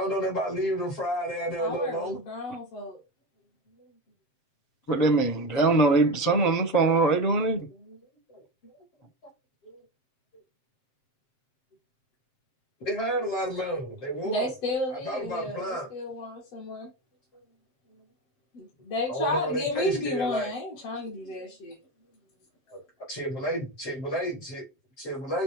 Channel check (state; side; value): late; right; 7.6 ms